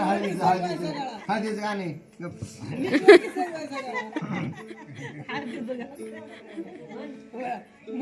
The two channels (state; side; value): identical; both; correlation 1.00